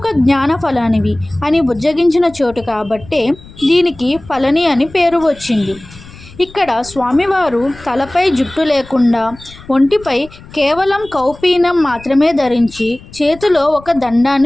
జ్ఞాన ఫలానివి అని బుజ్జగించిన చోటు కాబట్టే దీనికి పళని అని పేరు వచ్చింది. ఇక్కడ స్వామివారు తలపై జుట్టు లేకుండా ఒంటిపై కేవలం కౌపీనం మాత్రమే ధరించి చేతిలో ఒక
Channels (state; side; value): noise; left; rumble, 20 dB below the sound